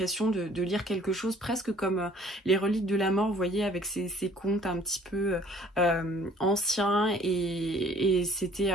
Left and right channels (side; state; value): both; normal; correlation 0.56